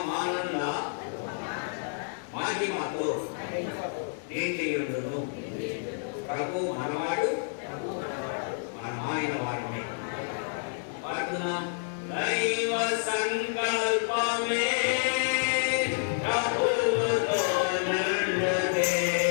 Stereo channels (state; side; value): silent; right; 58 dB below the other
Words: మహిమతో నిండియుండును. ప్రభు మనవాడు మనమాయన వాడమే. పాడుతున్నాం. దైవ సంకల్పమే ప్రభువుతో నుండునే.